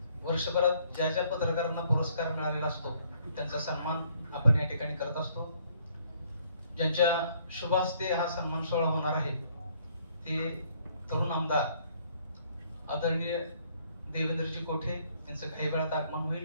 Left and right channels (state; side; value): inverted; both; correlation -0.65